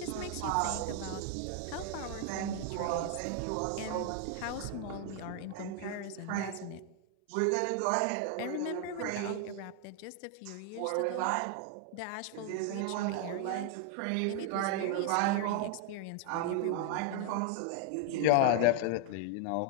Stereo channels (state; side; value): different; both; correlation 0.00